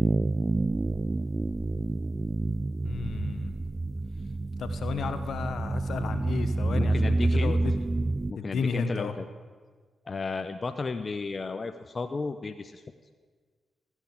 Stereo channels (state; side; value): normal; both; correlation 0.93